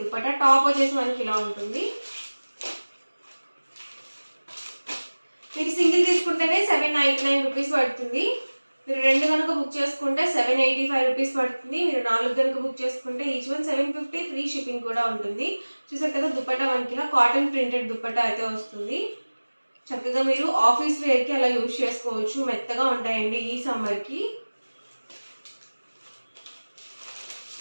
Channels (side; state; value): both; inverted; correlation -1.00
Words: దుపట్టా టాప్ వచ్చేసి మనకి ఇలా ఉంటుంది. మీరు సింగిల్ తీసుకుంటేనే 799 రూపీస్ పడుతుంది. మీరు 2 కనుక బుక్ చేసుకుంటే 785 రూపీస్ పడుతుంది. మీరు 4 కనుక బుక్ చేసుకుంటే ఈచ్ వన్ 750, ఫ్రీ షిప్పింగ్ కూడా ఉంటుంది. చూసారు కదా, దుపట్టా మనకి ఇలా కాటన్ ప్రింటెడ్ దుపట్టా అయితే వస్తుంది. చక్కగా మీరు ఆఫీస్ వేర్కి అలా యూజ్ చేసుకోవచ్చు. మెత్తగా ఉంటాయండి ఈ సమ్మర్కి.